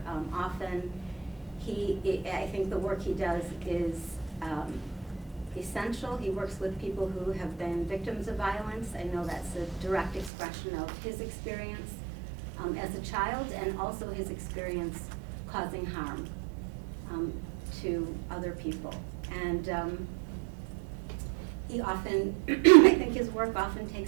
often. I think the work he does is essential. He works with people who have been victims of violence. I know that's a direct expression of his experience as a child, and also his experience causing harm to other people. And he often, I think his work often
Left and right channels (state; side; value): drops out; left; at 10.3 s